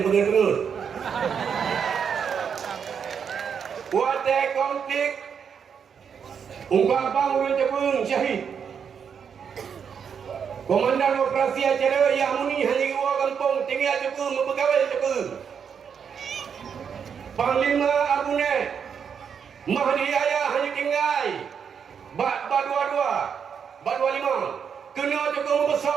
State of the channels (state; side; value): quieter; left; 7.1 dB